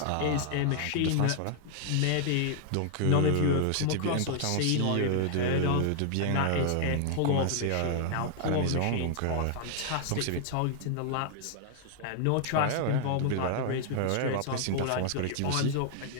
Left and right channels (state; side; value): different; both; correlation 0.00